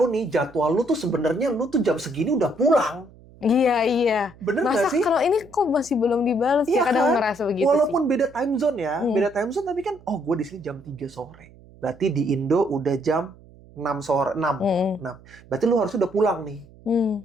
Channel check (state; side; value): noise; right; hum, 24 dB below the sound